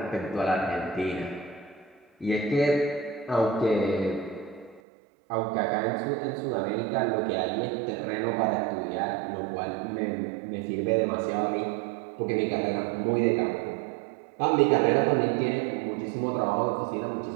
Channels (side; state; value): left; drops out; at 4.8 s